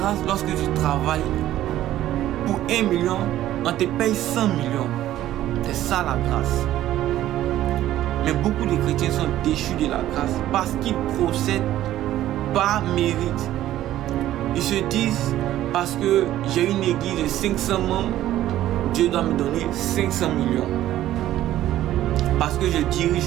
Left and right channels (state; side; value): quieter; left; 13.4 dB